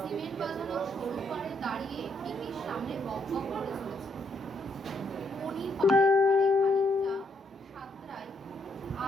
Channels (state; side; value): normal; both; correlation 0.74